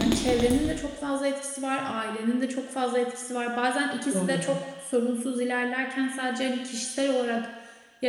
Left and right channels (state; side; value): identical; both; correlation 1.00